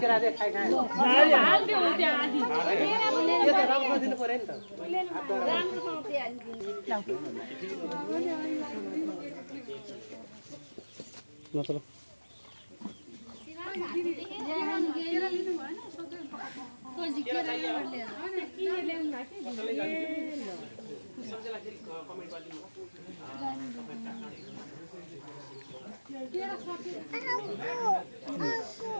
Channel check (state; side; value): inverted; both; correlation -1.00